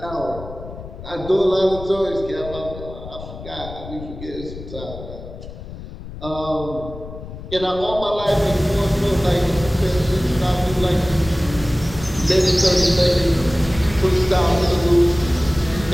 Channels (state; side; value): noise; left; rumble, 13 dB below the sound